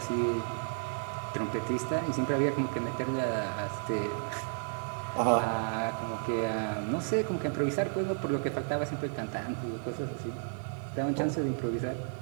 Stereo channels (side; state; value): left; silent; 56 dB below the other